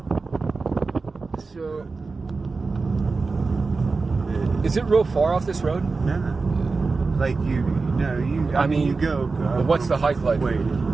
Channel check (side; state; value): left; quieter; 4.1 dB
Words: Is it real far off this road? No. Like I mean, you go. What's the hike like? Wait,